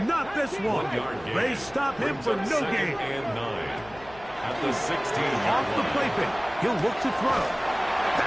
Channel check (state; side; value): noise; left; hum, 22 dB below the sound